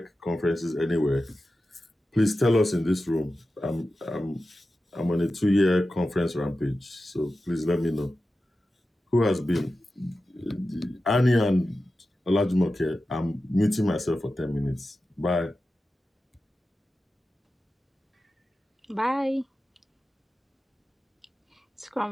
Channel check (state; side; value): normal; both; correlation 0.93